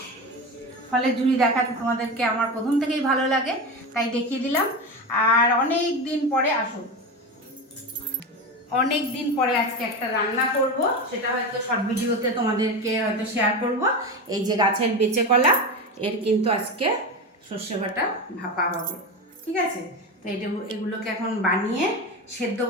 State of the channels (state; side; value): normal; both; correlation 0.21